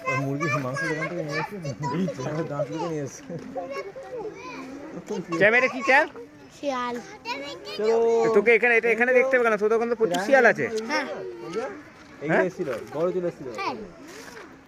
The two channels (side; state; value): both; identical; correlation 1.00